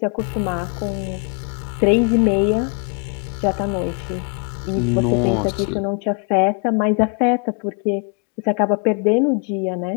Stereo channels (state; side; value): quieter; right; 38.7 dB